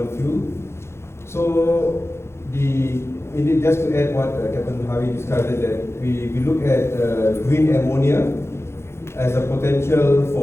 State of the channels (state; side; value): late; right; 0.13 ms